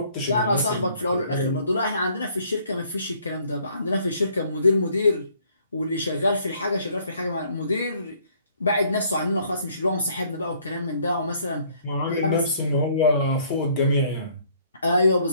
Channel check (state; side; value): inverted; both; correlation -0.63